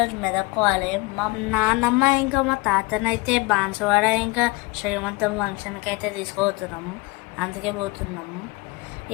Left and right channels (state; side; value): quieter; right; 22.9 dB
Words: మెదక్కోవాలి. మా నాన్నమ్మ ఇంకా మా తాతనైతే బాన్సువాడ ఇంకా శ్రీమంతం ఫంక్షన్కి అయితే తీసుకుపోతున్నాము. అందుకే పోతున్నాము.